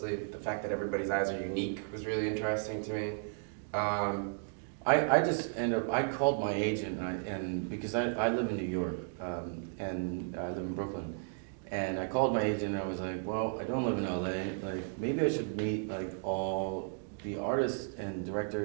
The fact that everybody's eyes are unique was really interesting to me. I just I called my agent, and because I live in New York, and I live in Brooklyn, and I called my agent and I was like, well, I don't live in LA, like maybe I should meet like all the artists and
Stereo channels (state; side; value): silent; left; digital silence